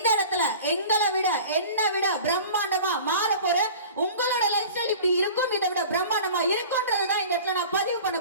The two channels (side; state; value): both; inverted; correlation -0.40